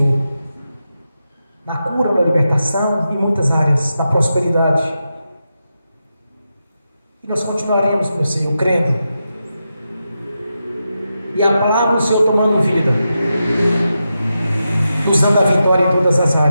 na cura, na libertação, em muitas áreas, na prosperidade. E nós continuaremos, meu Senhor, crendo, e a palavra do Senhor tomando vida, nos dando a vitória em todas as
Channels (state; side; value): inverted; both; correlation -0.88